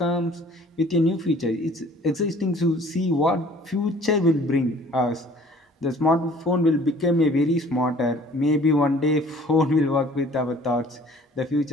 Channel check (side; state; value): both; normal; correlation 0.52